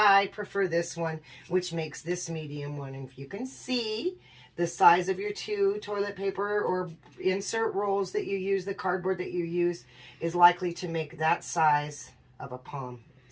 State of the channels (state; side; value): identical; both; correlation 1.00